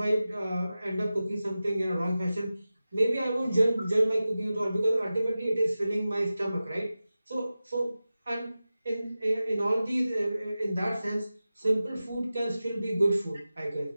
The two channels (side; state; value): both; inverted; correlation -0.95